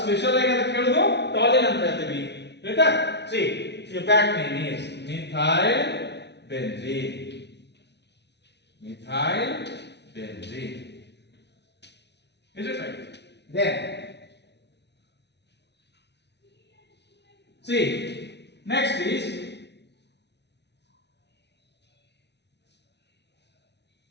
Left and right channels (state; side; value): late; right; 0.50 ms